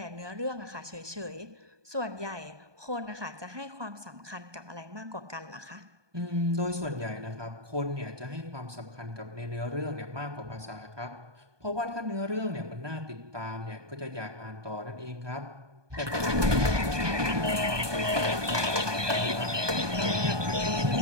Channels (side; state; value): left; late; 1.2 ms